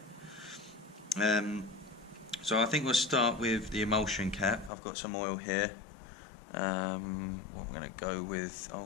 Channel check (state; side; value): drops out; right; at 4.7 s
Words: So I think we'll start with the emulsion cap. I've got some oil here. What I'm going to go with,